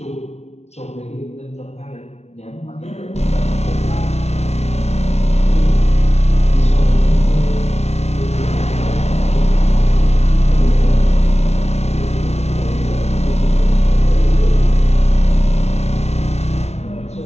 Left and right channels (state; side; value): late; right; 0.31 ms